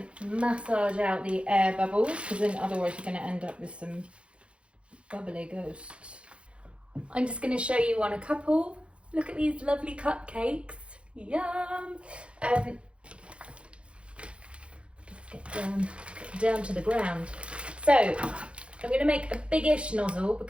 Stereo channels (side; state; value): left; late; 0.059 ms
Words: massage out the air bubbles, because then otherwise you're going to end up with some bubbly ghosts. I'm just going to show you on a couple. Look at these lovely cupcakes. Yum! Let's get down to the ground. So I'm going to make a biggish nozzle